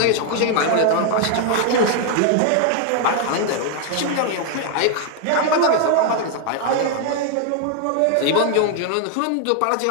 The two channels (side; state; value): both; different; correlation 0.00